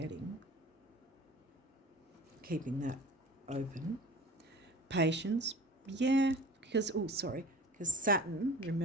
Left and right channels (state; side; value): normal; both; correlation 0.40